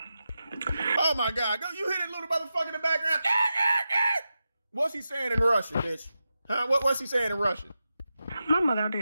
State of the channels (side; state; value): both; inverted; correlation -0.91